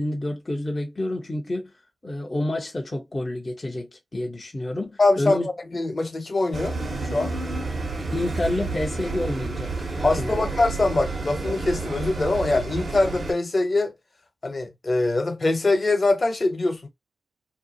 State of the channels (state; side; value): normal; both; correlation 0.94